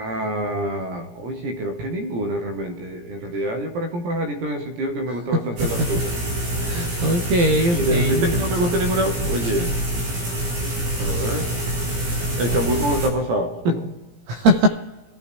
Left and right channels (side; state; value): left; late; 17 ms